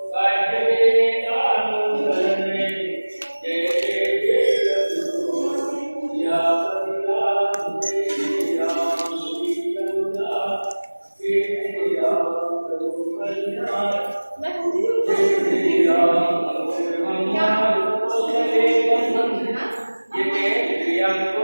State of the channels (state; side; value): inverted; both; correlation -1.00